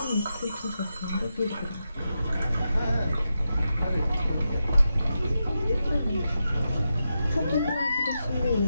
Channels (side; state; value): both; inverted; correlation -0.88